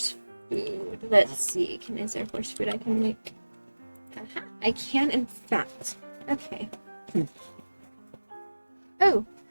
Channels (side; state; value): both; inverted; correlation -1.00